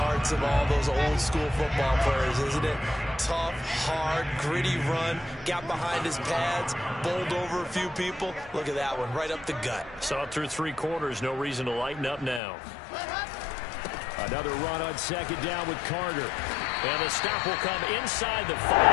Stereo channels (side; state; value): right; drops out; at 12.4 s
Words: of all those old-school football players, isn't it? Tough, hard, gritty run, got behind his pads, bowled over a few people. Look at that one, right up the gut. Saw it through 3 quarters, no reason to lighten up now. Another run on second down with Carter. And the stop will come inside the 5